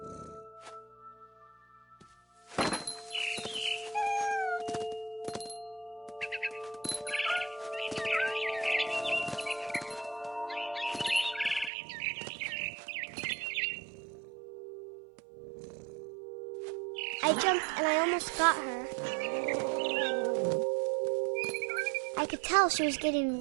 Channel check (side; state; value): left; drops out; at 11.7 s